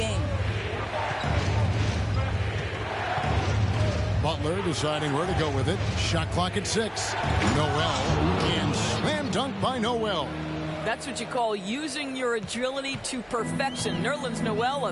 Butler deciding where to go with it. Shot clock at 6. Noel, and slam dunk by Noel. That's what you call using your agility to perfection. Nerlens Noel,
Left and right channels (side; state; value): both; identical; correlation 1.00